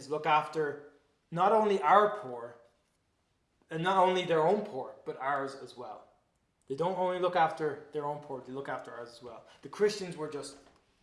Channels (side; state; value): both; identical; correlation 1.00